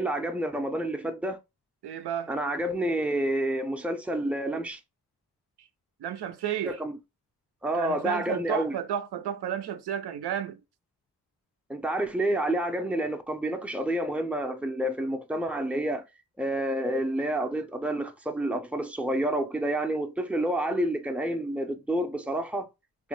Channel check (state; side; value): normal; both; correlation 0.64